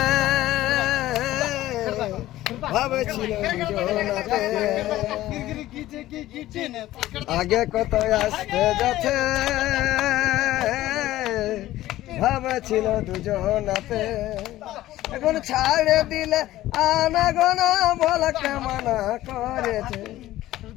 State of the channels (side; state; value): right; quieter; 15.3 dB